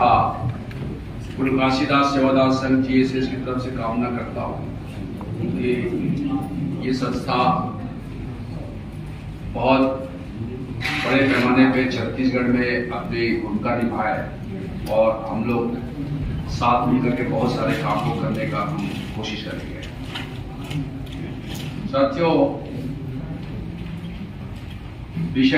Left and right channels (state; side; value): identical; both; correlation 1.00